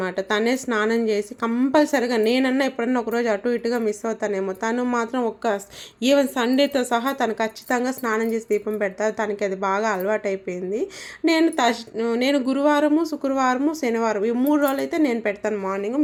తనే స్నానం చేసి కంపల్సరిగా. నేనన్నా ఎప్పుడన్నా ఒకరోజు అటు ఇటుగా మిస్ అవుతానేమో, తను మాత్రం ఈవెన్ సండేతో సహా తను ఖచ్చితంగా స్నానం చేసి దీపం పెడతారు. తనకి అది బాగా అలవాటు అయిపోయింది. నేను గురువారము, శుక్రవారము, శనివారం ఈ 3 రోజులు అయితే నేను పెడతాను మార్నింగ్,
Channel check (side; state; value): both; identical; correlation 1.00